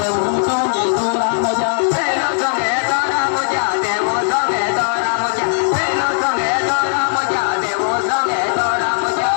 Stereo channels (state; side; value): silent; right; 60 dB below the other